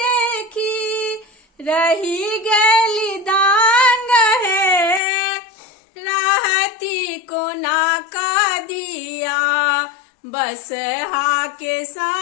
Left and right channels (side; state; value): right; drops out; at 5.0 s